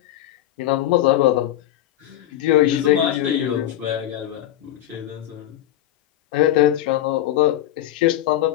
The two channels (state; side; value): quieter; right; 12.8 dB